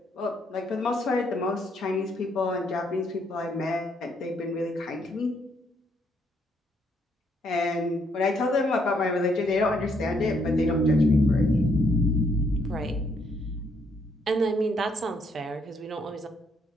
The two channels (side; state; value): both; normal; correlation 0.72